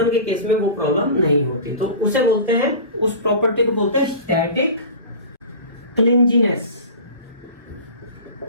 के केस में वो प्रॉब्लम नहीं होती, तो उसे बोलते हैं, उस प्रॉपर्टी को बोलते हैं स्टैटिक क्लिंजीनेस।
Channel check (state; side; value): inverted; both; correlation -0.35